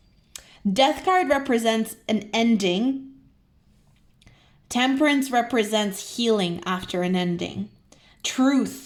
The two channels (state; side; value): identical; both; correlation 1.00